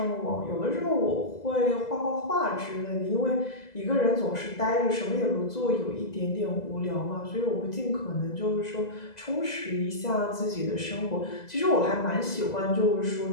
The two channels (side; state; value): right; late; 2.0 ms